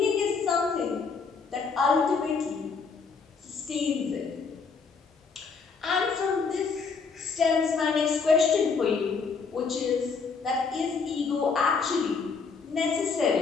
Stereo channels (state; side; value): quieter; right; 5.1 dB